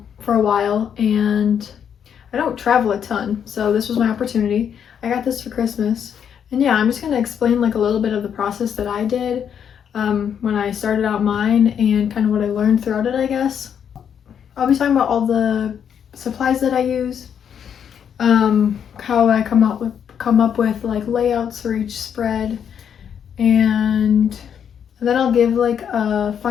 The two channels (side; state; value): right; quieter; 8.2 dB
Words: for a while, and I don't travel a ton, so this was my opportunity. I got this for Christmas, and yeah, I'm just going to explain like a little bit of the process that I did when I started out mine and kind of what I learned throughout it, I guess. I'll be talking about all the supplies that I use, how I come up with like layouts for each spread, and then I'll give like a